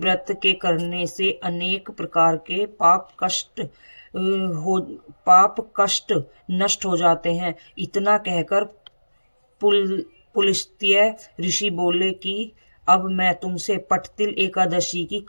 के करने से अनेक प्रकार के पाप कष्ट नष्ट हो जाते हैं। इतना कहकर पुलस्त्य ऋषि बोले कि अब मैं तुमसे पट्टतिल एकादशी की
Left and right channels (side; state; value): both; inverted; correlation -1.00